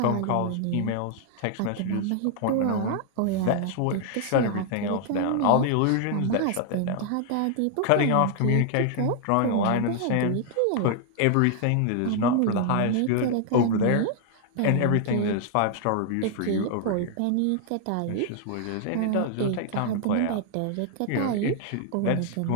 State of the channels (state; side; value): different; both; correlation 0.00